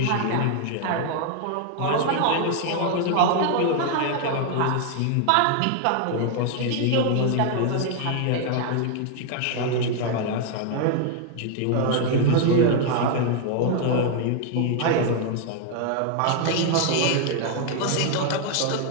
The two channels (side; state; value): both; different; correlation 0.00